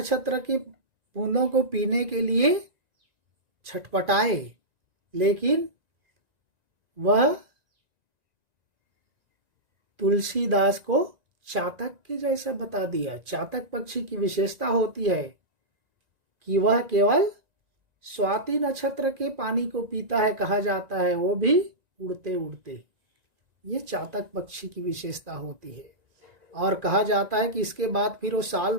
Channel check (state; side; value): late; left; 1.9 ms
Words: के बूंदों को पीने के लिए छटपटाए, लेकिन वह तुलसीदास को चातक के जैसा बता दिया। चातक पक्षी की विशेषता होती है कि वह केवल स्वाति नक्षत्र के पानी को पीता है, कहा जाता है, वो भी उड़ते उड़ते। ये चातक पक्षी की विशेषता होती है। और कहा जाता है कि इसके बाद फिर वो साल